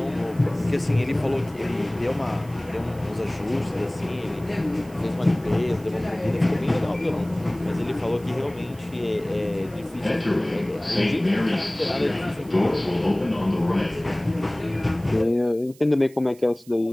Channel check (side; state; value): right; noise; hiss, 25 dB below the sound